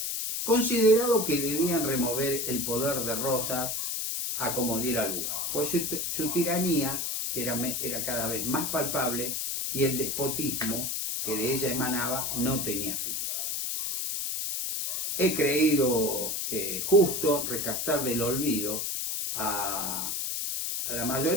considerado que debían remover el poder de Rosas a como diera lugar, pues su tiranía, que era cada vez más palpable, y el despotismo que de ella emanaba no tenía fin. He creído justo rescatar del olvido a la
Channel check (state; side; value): noise; left; hiss, 1 dB below the sound